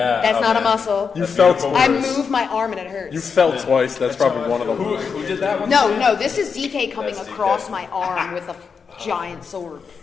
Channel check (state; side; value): quieter; right; 5.8 dB